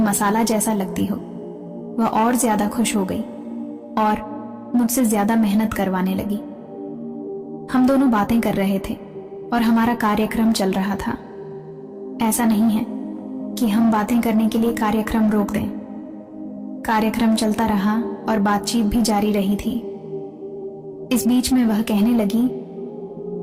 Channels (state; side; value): identical; both; correlation 1.00